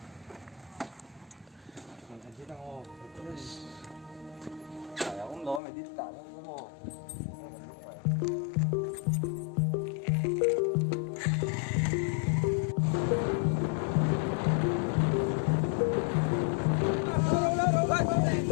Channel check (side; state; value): right; drops out; at 5.6 s